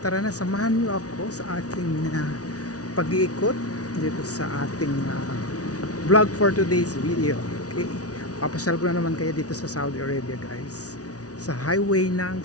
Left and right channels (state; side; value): late; right; 0.68 ms